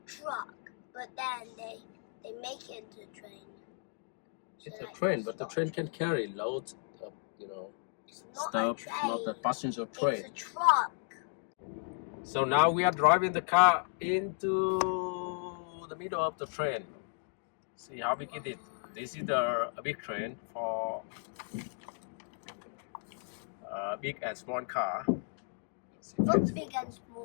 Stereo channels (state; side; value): silent; right; 55 dB below the other